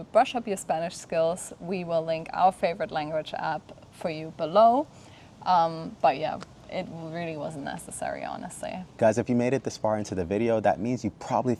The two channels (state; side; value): identical; both; correlation 1.00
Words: brush up your Spanish skills, we will link our favorite language app for you below. But yeah, it really wasn't necessary, honestly. Guys, if you made it this far into the video, that means you probably